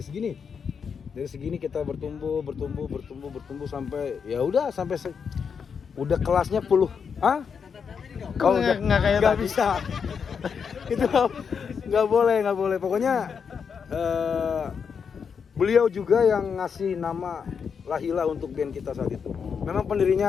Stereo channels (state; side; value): quieter; right; 6.4 dB